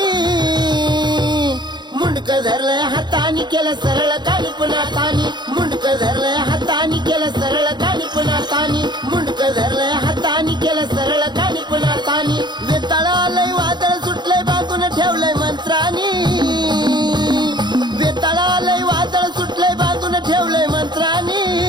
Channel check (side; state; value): left; late; 0.21 ms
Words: मुंडक धरलंय हातानी केलं सरळ कानी पुन्हा तानी, मुंडक धरलंय हातानी केलं सरळ कानी पुन्हा तानी, मुंडक धरलंय हातानी केलं सरळ कानी पुन्हा तानी, बेताळालय वादळ सुटलंय बांधून ठेवलंय मंत्रानी, बेताळालय वादळ सुटलंय बांधून ठेवलंय मंत्रानी,